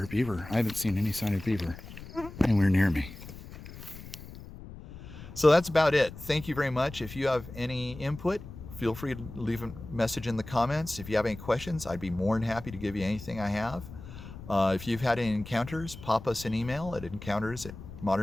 beaver. I haven't seen any sign of beaver anywhere near me. So that's about it. Thank you very much. If you have any input, feel free to leave a message in the comments. If you have any questions, I'd be more than happy to give you anything I have. If you've had any encounters, pop us an email at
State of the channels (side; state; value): left; noise; rumble, 14 dB below the sound